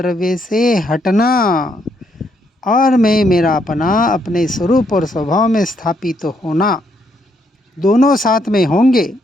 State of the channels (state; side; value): normal; both; correlation 0.74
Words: से हटना, और मैं मेरापना अपने स्वरूप और स्वभाव में स्थापित होना, दोनों साथ में होंगे।